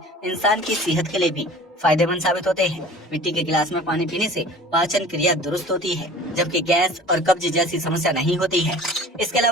इंसान की सेहत के लिए भी फायदेमंद साबित होते हैं। मिट्टी के गिलास में पानी पीने से पाचन क्रिया दुरुस्त होती है, जबकि गैस और कब्ज जैसी समस्या नहीं होती है। इसके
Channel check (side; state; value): both; normal; correlation 0.44